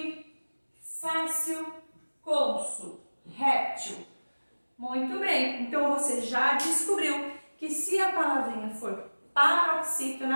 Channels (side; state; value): both; inverted; correlation -1.00